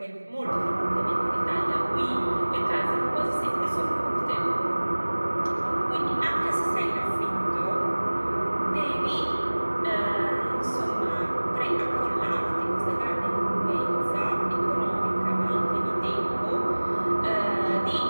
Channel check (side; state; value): both; inverted; correlation -1.00